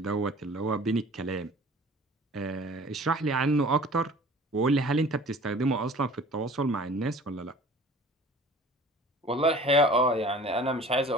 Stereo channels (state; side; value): normal; both; correlation 0.46